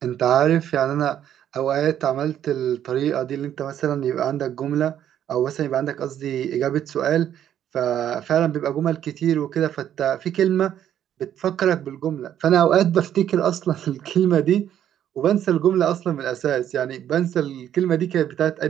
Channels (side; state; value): left; quieter; 10.4 dB